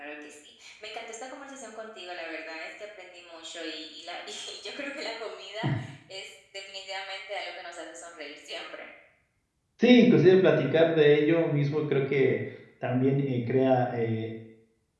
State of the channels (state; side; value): identical; both; correlation 1.00